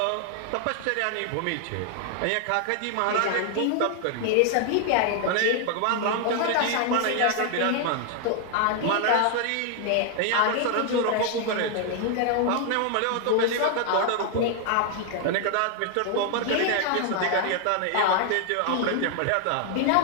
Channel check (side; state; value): both; different; correlation 0.00